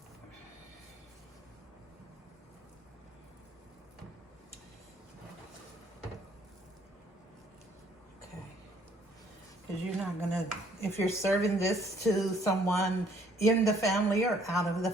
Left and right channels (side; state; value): both; normal; correlation 0.62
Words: Okay. Because you're not gonna if you're serving this to someone in the family or out of the